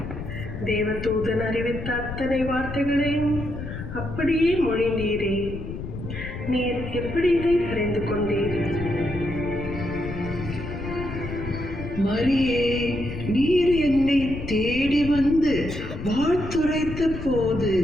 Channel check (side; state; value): left; noise; rumble, 8 dB below the sound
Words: தேவதூதன் அறிவித்த அத்தனை வார்த்தைகளையும் அப்படியே மொழிந்தீரே. நீர் எப்படி இதை அறிந்து கொண்டீர்? மரியே, நீர் என்னை தேடி வந்து வாழ்த்துரைத்த போது